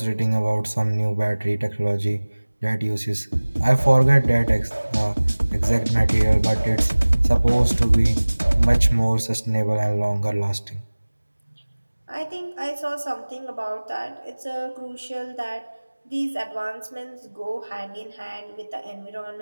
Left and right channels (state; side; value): inverted; both; correlation -1.00